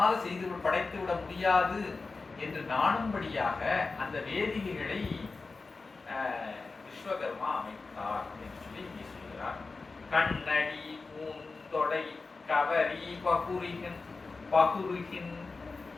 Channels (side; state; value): right; quieter; 4.0 dB